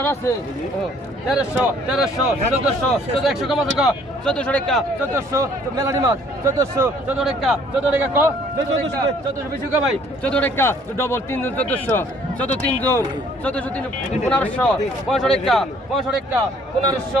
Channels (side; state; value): both; normal; correlation 0.59